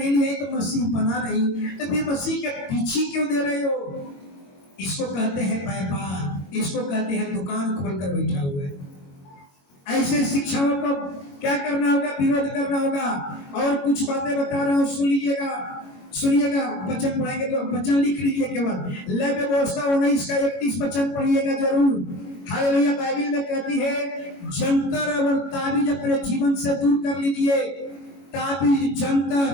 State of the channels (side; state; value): right; late; 22 ms